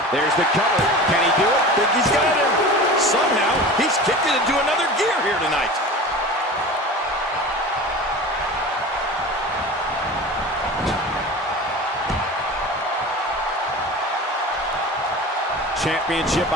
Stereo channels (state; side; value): normal; both; correlation 0.35